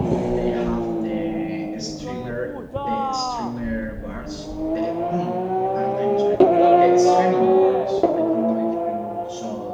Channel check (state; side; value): identical; both; correlation 1.00